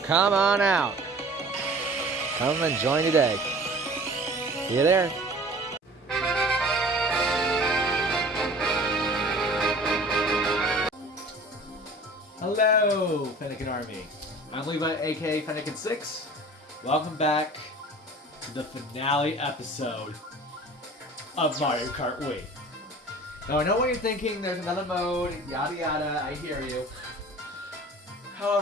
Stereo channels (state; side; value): normal; both; correlation 0.44